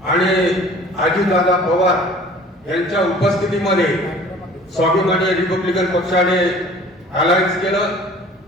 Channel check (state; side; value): normal; both; correlation 0.48